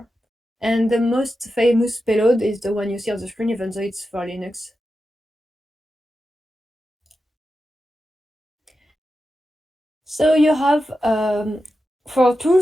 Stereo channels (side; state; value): both; normal; correlation 0.90